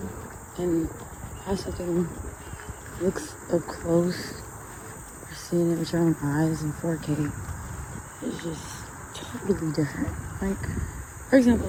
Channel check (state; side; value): identical; both; correlation 1.00